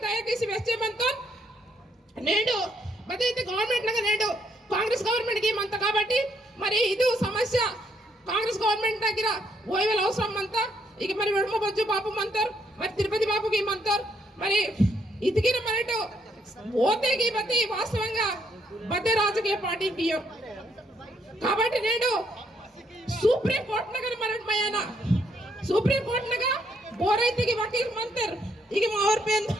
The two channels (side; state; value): both; normal; correlation 0.73